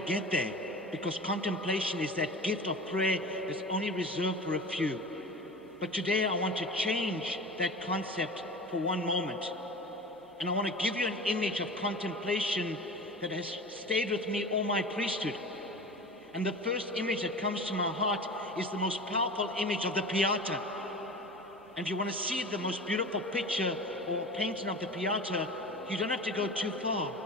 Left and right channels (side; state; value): both; normal; correlation 0.34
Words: there, because contemplation is that gift of prayer that's only reserved for a few. But today I want to change that concept for one moment. And I want to give you an image of contemplation that has stayed with me all my priesthood. And the first image that comes to my heart is the most powerful image of the Pieta. And if you want to see the most beautiful picture or painting of the Pieta, you don't have to go too far.